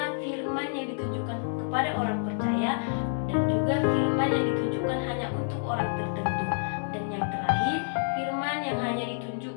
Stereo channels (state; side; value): silent; right; digital silence